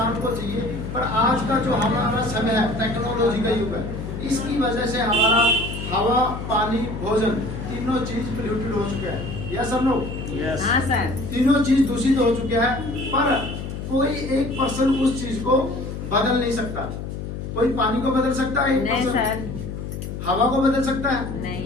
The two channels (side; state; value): left; noise; hum, 7 dB below the sound